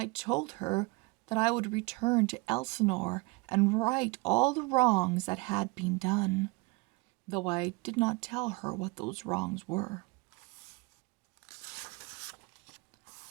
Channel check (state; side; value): quieter; left; 26.3 dB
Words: told her that I would return to Elsinore and right all the wrongs that had been done, though I did not tell her what those wrongs were.